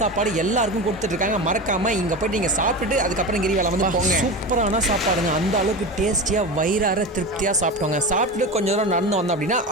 எல்லாருக்கும் கொடுத்துட்ருக்காங்க. மறக்காமல் இங்கே போய்ட்டு நீங்கள் சாப்பிட்டுட்டு அதுக்கப்புறம் கிரிவலம் போங்க. சூப்பரான சாப்பாடுங்க. அந்த அளவுக்கு டேஸ்டியாக வயிறார திருப்தியாக சாப்பிட்டோங்க. சாப்பிட்டு கொஞ்சம் தூரம் நடந்து வந்தோம் அப்படின்னா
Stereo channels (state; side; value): normal; both; correlation 0.25